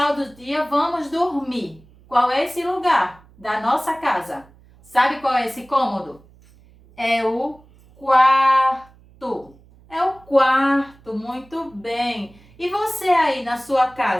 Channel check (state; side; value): noise; right; hum, 27 dB below the sound